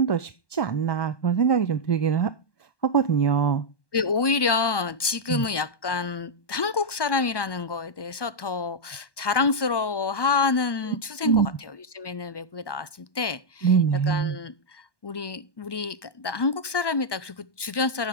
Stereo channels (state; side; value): late; right; 1.2 ms